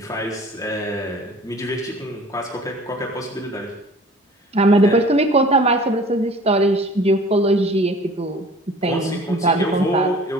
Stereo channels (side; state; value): both; normal; correlation 0.47